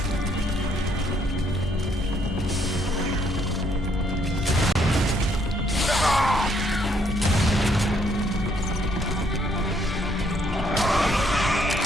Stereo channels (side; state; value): both; normal; correlation 0.69